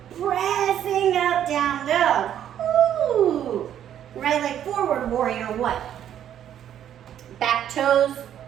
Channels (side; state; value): left; quieter; 10.3 dB